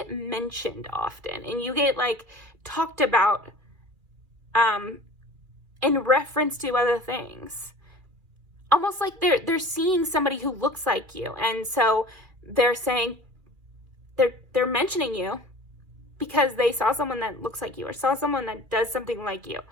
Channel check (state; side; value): late; left; 2.6 ms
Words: mentioned often and you get like talked about in reference to other things. Almost like they're seeing somebody who looks like you. And so they're saying, they're mentioning you because they saw someone that looks like you or saw someone that does something like you.